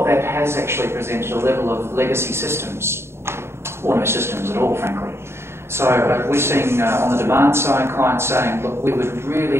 that has actually presented a level of legacy systems, or no systems at all, frankly. So we're seeing on the demand side clients saying, look, we would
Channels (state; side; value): late; left; 0.12 ms